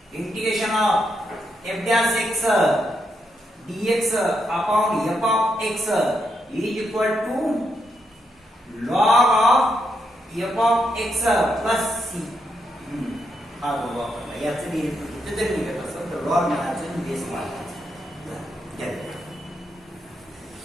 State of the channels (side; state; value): both; normal; correlation 0.81